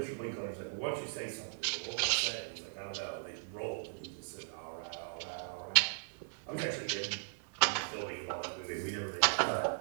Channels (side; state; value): left; silent; digital silence